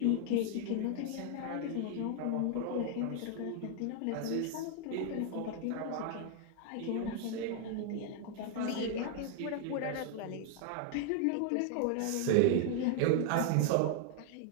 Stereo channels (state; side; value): different; both; correlation 0.00